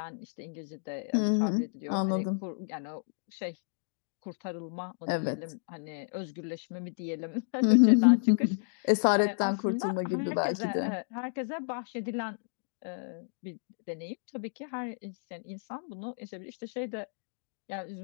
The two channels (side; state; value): right; silent; digital silence